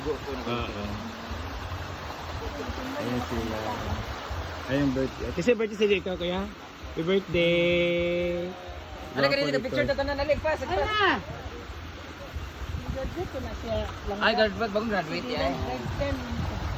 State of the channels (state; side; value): identical; both; correlation 1.00